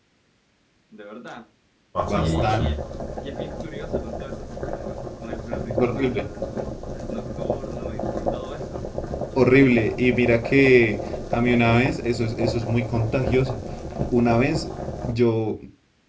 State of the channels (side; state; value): both; identical; correlation 1.00